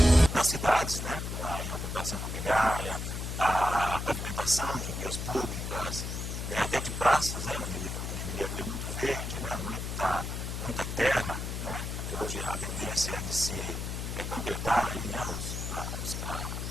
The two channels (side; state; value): left; noise; hum, 4 dB below the sound